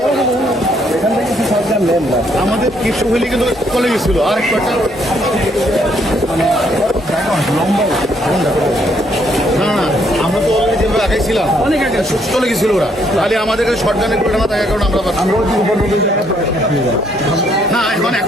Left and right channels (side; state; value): both; normal; correlation 0.70